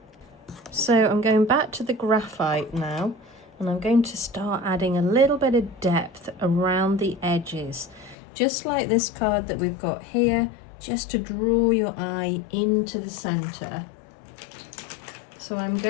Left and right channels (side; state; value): right; drops out; at 8.2 s